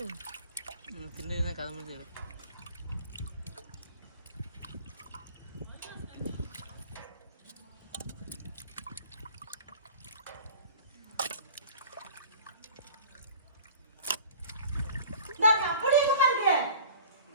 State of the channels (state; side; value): inverted; both; correlation -0.43